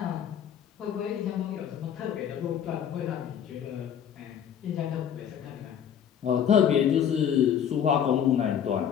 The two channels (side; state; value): right; quieter; 8.9 dB